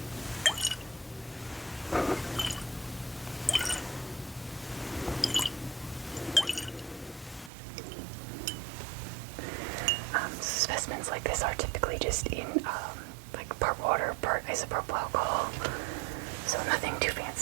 specimens like this are typically just in like part water, part isopropyl alcohol, so nothing too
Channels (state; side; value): drops out; left; at 7.5 s